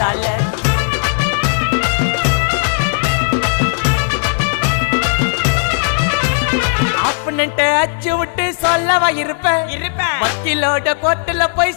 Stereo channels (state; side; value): silent; right; digital silence